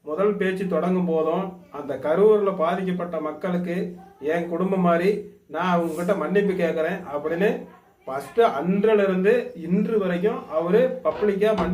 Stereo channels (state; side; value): identical; both; correlation 1.00